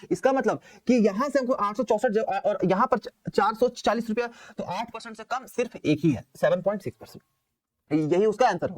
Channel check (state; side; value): identical; both; correlation 1.00